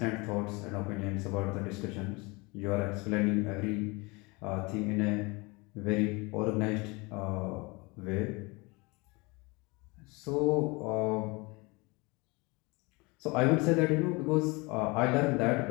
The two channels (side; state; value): right; quieter; 26.3 dB